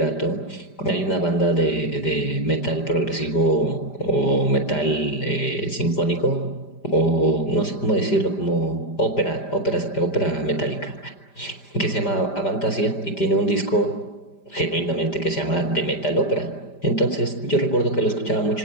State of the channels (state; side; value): late; right; 5.0 ms